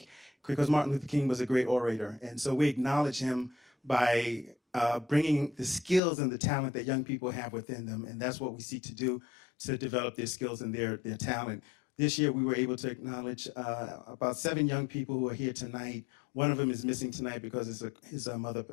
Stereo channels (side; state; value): right; drops out; at 6.0 s